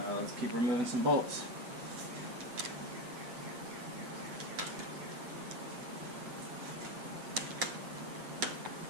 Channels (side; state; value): left; late; 8.1 ms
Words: Let's keep removing some bolts.